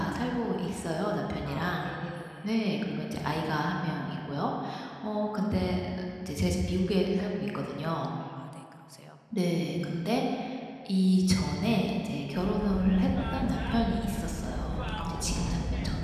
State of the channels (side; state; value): both; identical; correlation 1.00